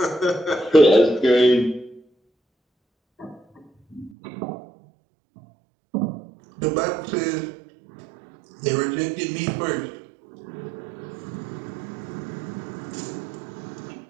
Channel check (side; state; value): left; drops out; at 4.1 s